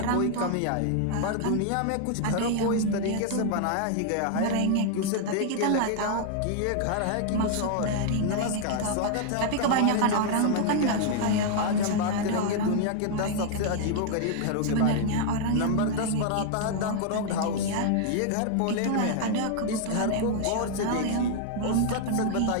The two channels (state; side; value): different; both; correlation 0.00